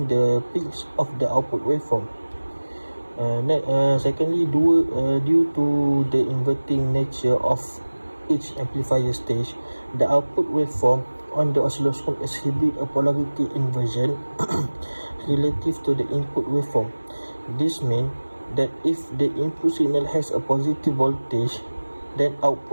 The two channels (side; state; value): both; inverted; correlation -1.00